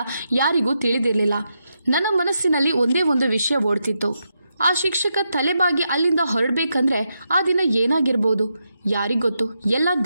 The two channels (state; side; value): inverted; both; correlation -0.84